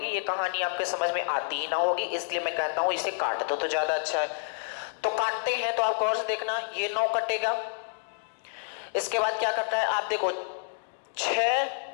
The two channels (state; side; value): silent; right; digital silence